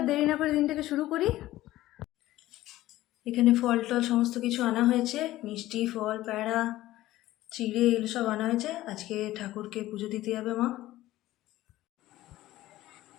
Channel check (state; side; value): quieter; right; 15.8 dB